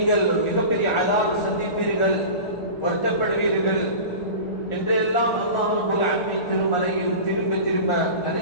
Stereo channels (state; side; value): late; right; 1.4 ms